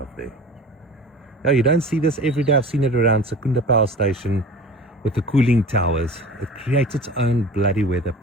there. Now you don't see this every day. I've seen it around Secunda Power Station with the cooling towers. It creates its own bloody weather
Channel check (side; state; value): both; normal; correlation 0.39